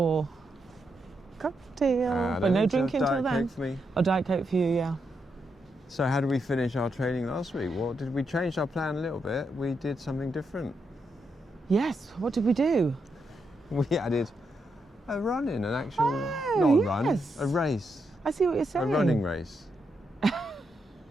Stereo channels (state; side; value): normal; both; correlation 0.82